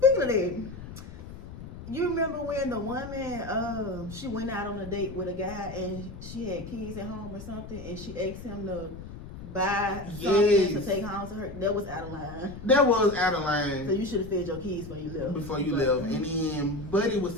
of that, you remember when the woman, she went out on a date with a guy and she had kids at home or something, and she asked him to buy something to take home to her? That was out of line. That was out of line. So you should have fed your kids before you left. And then Buddy was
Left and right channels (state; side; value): noise; left; rumble, 12 dB below the sound